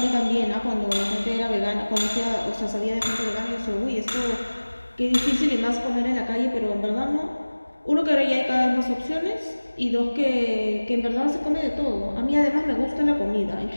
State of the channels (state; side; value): inverted; both; correlation -1.00